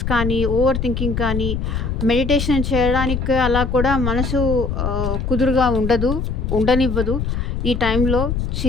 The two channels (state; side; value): noise; left; rumble, 2 dB below the sound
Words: కానీ, ఓవర్ థింకింగ్ కానీ, మెడిటేషన్ చేయడానికి అలా కూడా మనసు కుదురుగా ఉండనివ్వదు. ఈ టైంలో